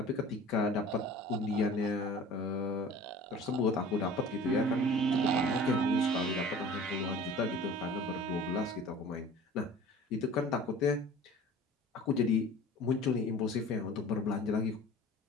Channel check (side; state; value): both; normal; correlation 0.43